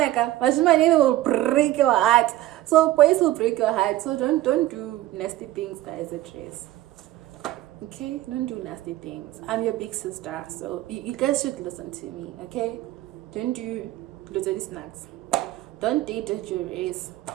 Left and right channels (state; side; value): quieter; left; 15.5 dB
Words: will break your heart. So boys will break your heart. So don't do nasty things, guys, at race. Okay? Don't do nasty things. I'm your big sister, so you guys should listen to me, okay? Don't do little snacks. Don't date at your race.